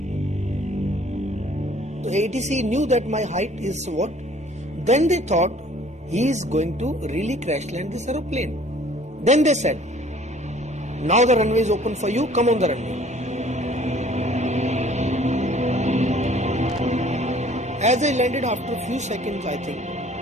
The ATC knew that my height is what? Then they thought he is going to really crash land this aeroplane. Then they said, now the runway is open for you, come on the runway. As I landed, after a few seconds, I think,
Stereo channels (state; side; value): normal; both; correlation 0.54